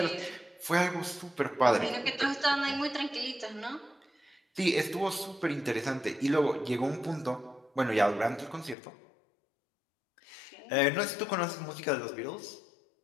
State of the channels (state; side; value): drops out; right; at 8.8 s